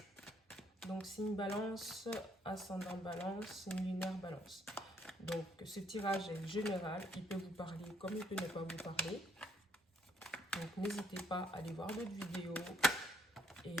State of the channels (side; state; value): both; normal; correlation 0.69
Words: Donc, signe balance, ascendant balance, signe lunaire balance. Donc, ce tirage est général. Il peut vous parler comme il peut ne pas vous parler. Donc, n'hésitez pas à aller voir d'autres vidéos et